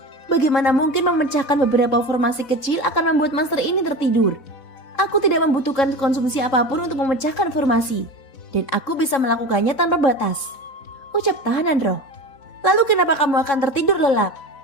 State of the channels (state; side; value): late; right; 3.7 ms